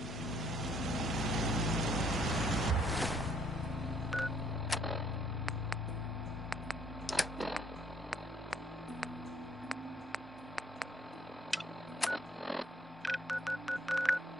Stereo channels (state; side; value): normal; both; correlation 0.66